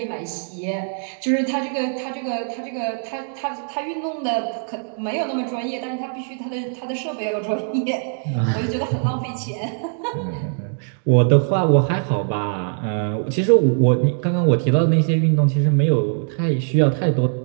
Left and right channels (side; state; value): left; silent; 64 dB below the other